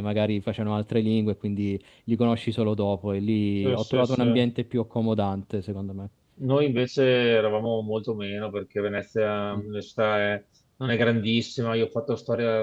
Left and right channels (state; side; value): identical; both; correlation 1.00